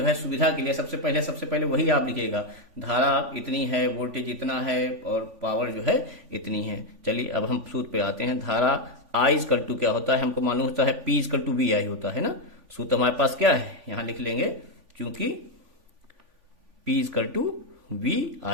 है सुविधा के लिए सबसे पहले वही आप लिखिएगा, धारा इतनी है, वोल्टेज इतना है, और पावर जो है इतनी है। चलिए अब हम सूत्र पे आते हैं। धारा आई इक्वल टू क्या होता है, हमको मालूम होता है P equal to V I होता है ना। सूत्र हमारे पास क्या है, यहां लिख लेंगे, क्योंकि P equal to V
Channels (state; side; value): late; left; 3.5 ms